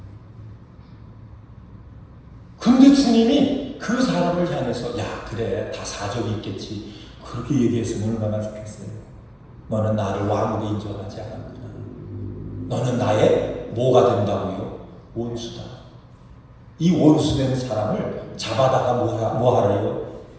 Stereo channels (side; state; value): both; identical; correlation 1.00